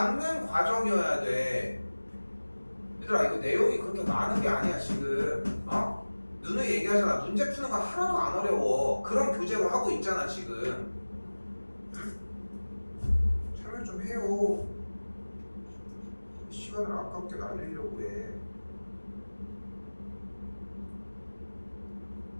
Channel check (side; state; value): both; inverted; correlation -1.00